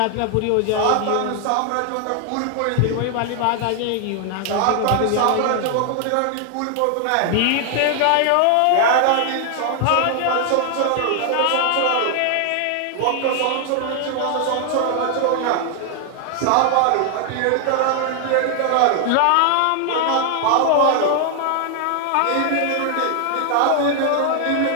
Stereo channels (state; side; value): different; both; correlation 0.00